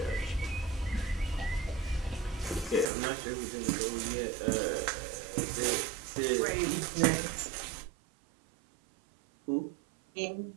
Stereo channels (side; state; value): left; drops out; at 2.9 s